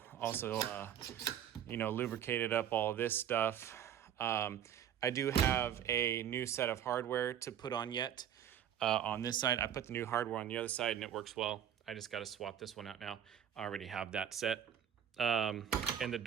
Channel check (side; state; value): left; quieter; 9.6 dB